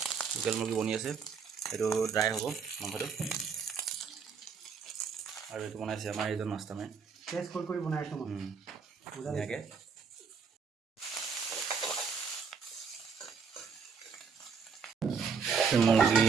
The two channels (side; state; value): left; quieter; 5.9 dB